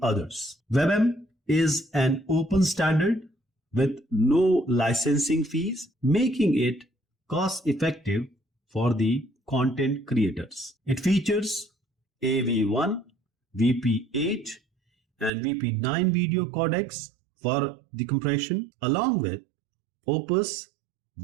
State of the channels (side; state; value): left; drops out; at 15.3 s